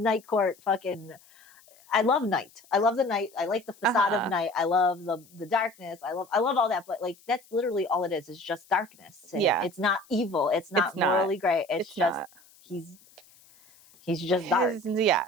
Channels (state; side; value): noise; left; hiss, 27 dB below the sound